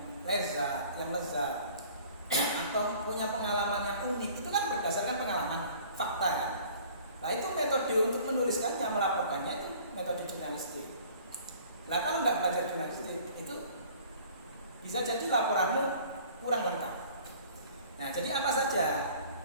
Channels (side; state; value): both; inverted; correlation -0.50